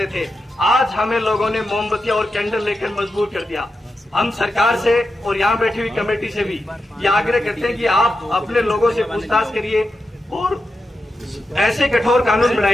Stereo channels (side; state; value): both; normal; correlation 0.89